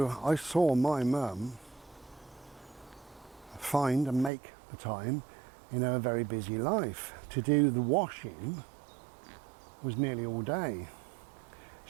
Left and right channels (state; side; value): drops out; left; at 4.3 s